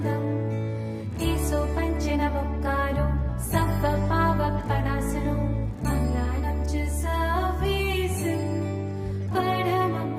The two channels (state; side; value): identical; both; correlation 1.00